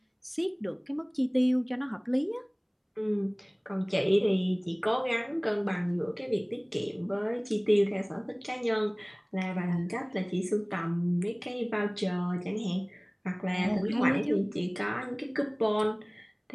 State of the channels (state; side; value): identical; both; correlation 1.00